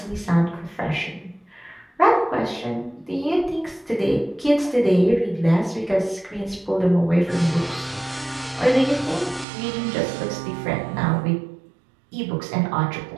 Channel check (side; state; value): left; drops out; at 9.5 s